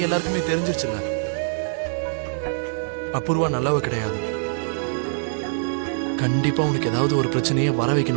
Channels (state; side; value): silent; left; digital silence